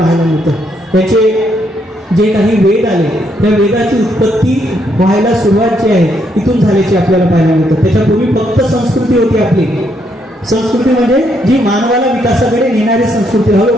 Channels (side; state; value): both; normal; correlation 0.74